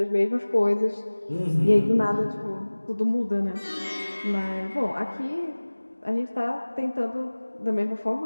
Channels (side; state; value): both; inverted; correlation -1.00